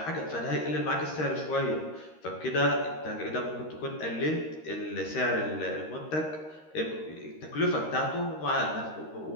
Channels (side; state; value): right; late; 13 ms